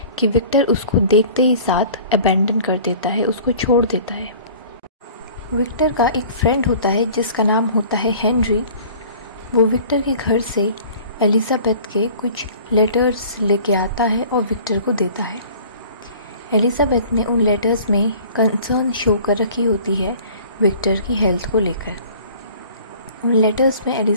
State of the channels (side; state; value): both; inverted; correlation -0.47